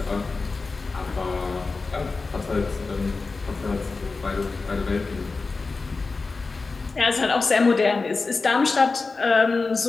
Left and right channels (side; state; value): right; quieter; 4.0 dB